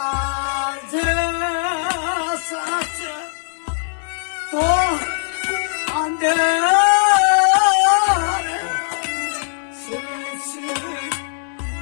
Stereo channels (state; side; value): silent; right; 65 dB below the other